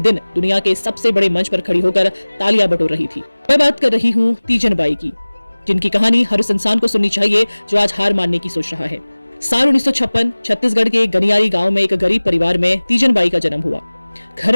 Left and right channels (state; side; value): inverted; both; correlation -1.00